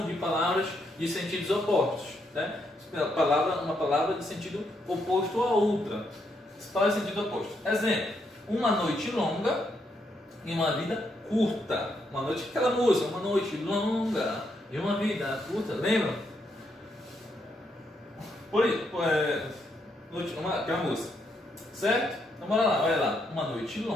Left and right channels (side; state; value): both; normal; correlation 0.78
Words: de palavras de sentidos opostos, né? Uma palavra de sentido oposto a outra. Palavras de sentido oposto. Exemplo: uma noite longa e uma vida curta. Uma noite, aquela música, uma noite longa e uma vida curta, lembram? Aquela música, certo? Então bora lá, olha lá. Uma noite